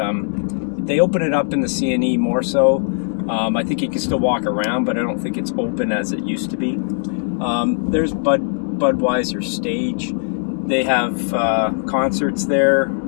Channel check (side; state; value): right; silent; 66 dB below the other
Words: they open it up in the CNE more so. I think you can still walk around, but I don't think it's open as it used to be. There's Budweiser Stage. They have concerts there